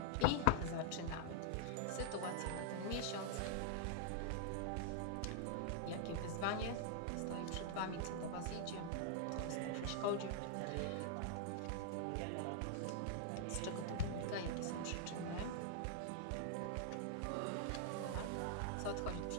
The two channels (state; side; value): different; both; correlation -0.01